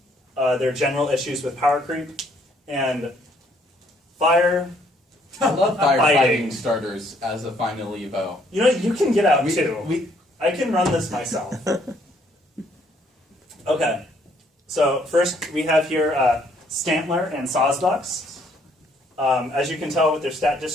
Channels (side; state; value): both; normal; correlation 0.66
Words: There are general issues with power creep and fire. I love Fighting. firefighting starters as a final Evo. You know, you can get out too. We, I can run this myself. Okay. So first we have here Stantler and Sawsbucks. As you can tell with their stat